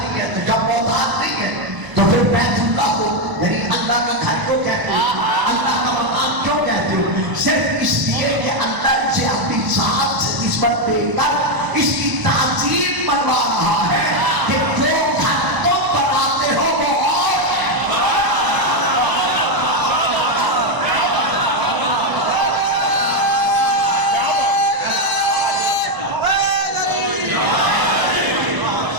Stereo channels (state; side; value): late; left; 1.0 ms